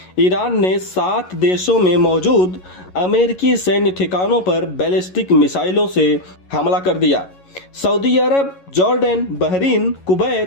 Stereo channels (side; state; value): right; late; 11 ms